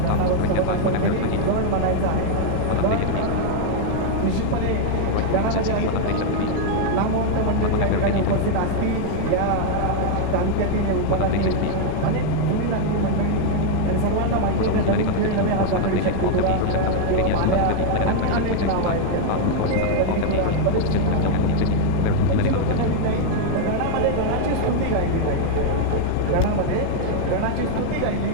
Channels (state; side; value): different; both; correlation 0.00